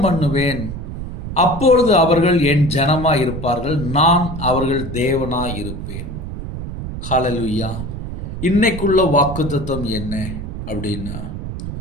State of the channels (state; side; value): noise; right; rumble, 7 dB below the sound